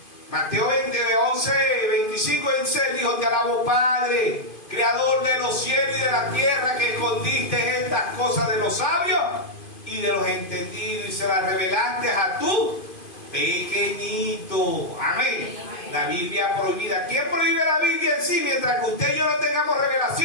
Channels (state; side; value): late; right; 2.5 ms